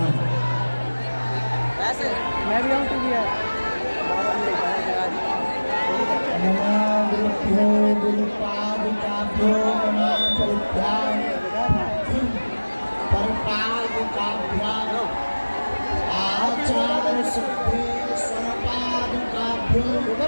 ऐसे मैं भी आऊँ तू भी है। नमामृत्यो गुरुपादुकाभ्यो नमः परित्याग परपादुकाभ्याम आचार्य सिद्धि स्वपादुकाभ्यो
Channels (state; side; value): inverted; both; correlation -1.00